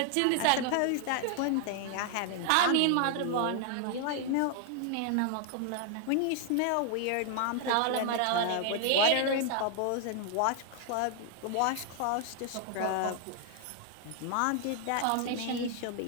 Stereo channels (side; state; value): both; different; correlation 0.00